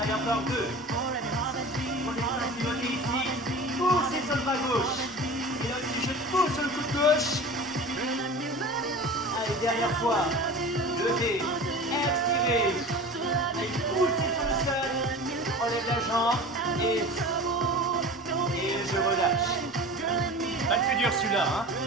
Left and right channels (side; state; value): both; normal; correlation 0.36